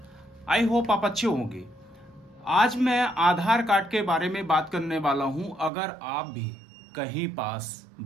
आई होप आप अच्छे होंगे। आज मैं आधार कार्ड के बारे में बात करने वाला हूं। अगर आप भी कहीं पास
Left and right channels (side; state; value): left; drops out; at 5.7 s